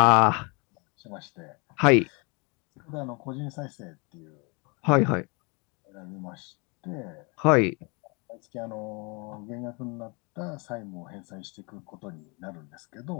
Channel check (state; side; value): quieter; right; 30.7 dB